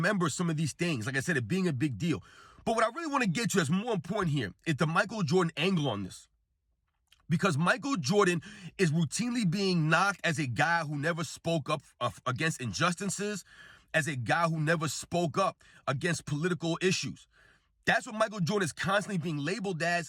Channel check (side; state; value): both; identical; correlation 1.00